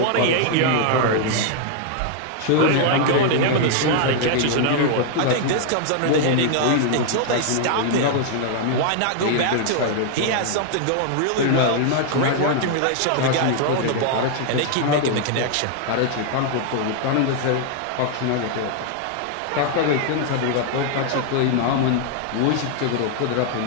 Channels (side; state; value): both; different; correlation 0.00